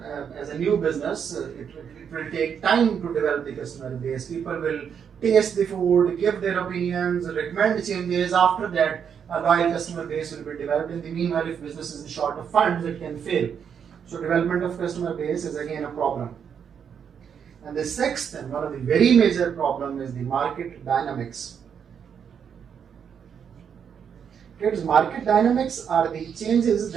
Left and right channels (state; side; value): quieter; left; 7.6 dB